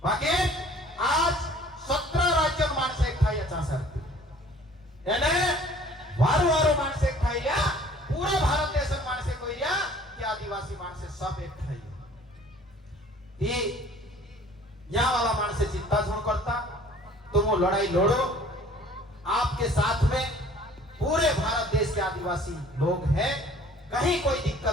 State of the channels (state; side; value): normal; both; correlation 0.52